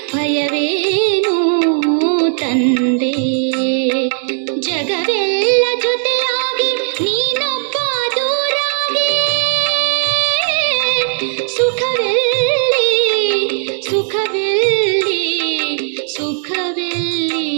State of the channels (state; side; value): silent; left; digital silence